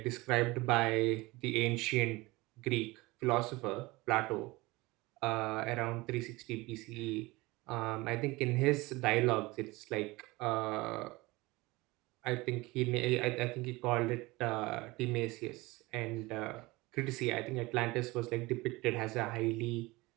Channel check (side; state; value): left; quieter; 22.1 dB